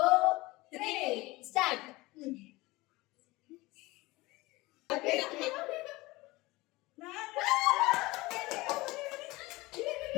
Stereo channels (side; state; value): right; quieter; 21.2 dB